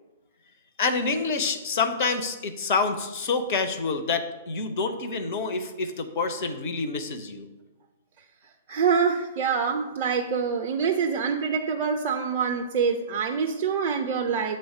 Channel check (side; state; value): both; inverted; correlation -0.31